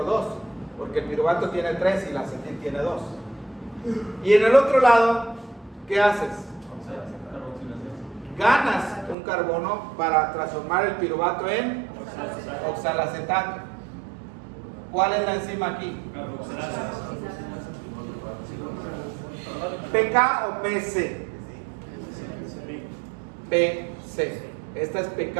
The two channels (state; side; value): drops out; left; at 9.2 s